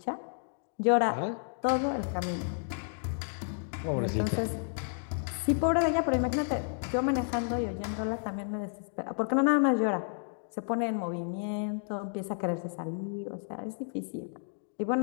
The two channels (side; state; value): right; silent; digital silence